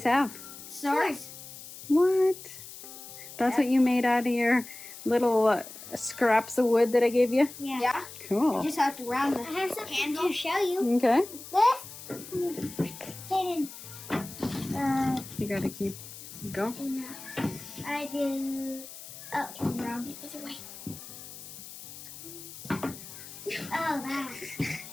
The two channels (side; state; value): left; noise; hiss, 14 dB below the sound